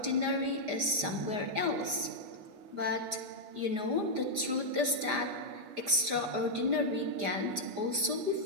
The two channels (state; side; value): late; left; 4.9 ms